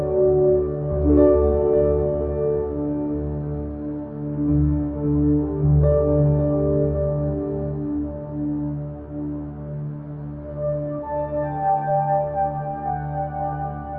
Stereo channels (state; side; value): identical; both; correlation 1.00